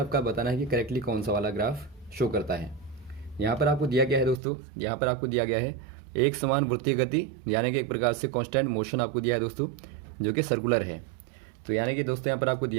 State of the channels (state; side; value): drops out; left; at 4.4 s